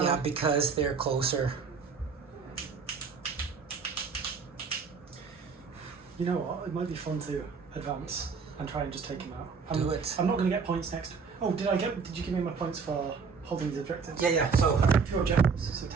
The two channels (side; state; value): left; quieter; 5.4 dB